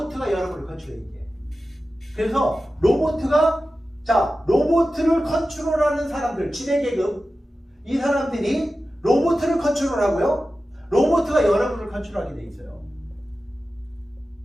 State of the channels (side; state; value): both; normal; correlation 0.94